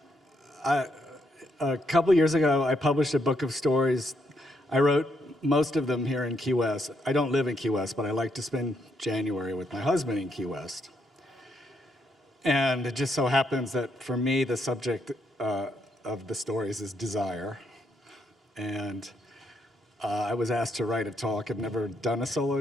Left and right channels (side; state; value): both; normal; correlation 0.76